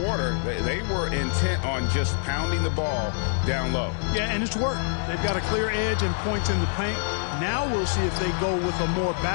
they were intent on just pounding the ball down low. Yeah, and it's worked. They've got a clear edge and points in the paint. Now we'll see if they go with a more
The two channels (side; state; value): right; silent; digital silence